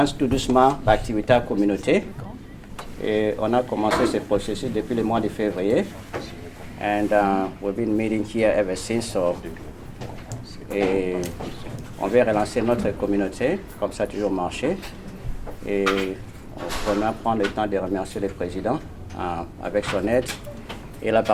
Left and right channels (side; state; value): both; identical; correlation 1.00